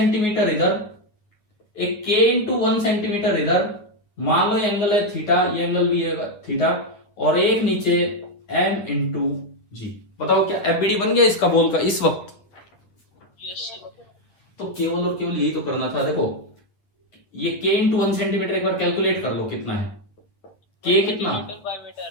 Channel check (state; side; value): late; right; 9.6 ms